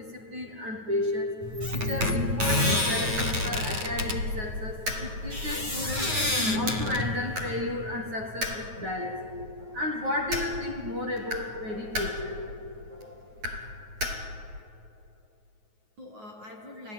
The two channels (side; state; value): left; late; 9.3 ms